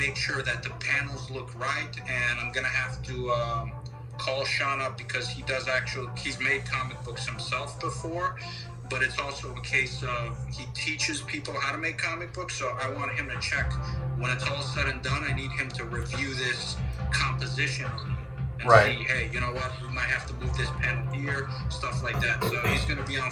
sure that the panels look right, and I'm gonna have to call Sean up because he's made comic books himself before, but it's also a case of he teaches people how to make comic books. So I want him to check when it's all said and done. I need him to review this composition and see, hey, you know what, we might have to move this panel here, stuff like that. So he's gonna be on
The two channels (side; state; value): both; identical; correlation 1.00